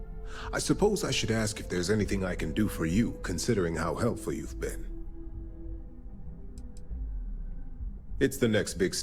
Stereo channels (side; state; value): both; identical; correlation 1.00